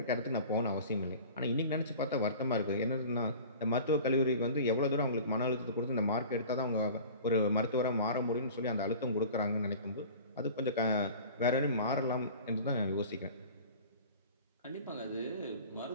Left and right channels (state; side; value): inverted; both; correlation -0.41